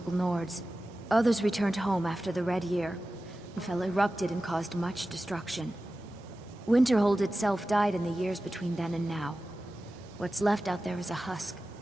Nords. Others returned home after the Red Year. Fell erupted and caused much destruction. Winterhold itself died in the years between then and now. What's left out there is a husk.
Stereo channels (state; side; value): normal; both; correlation 0.94